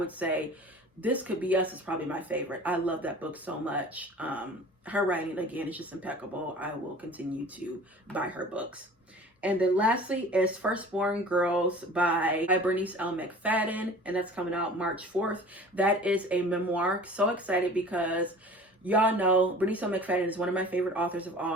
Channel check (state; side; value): normal; both; correlation 0.43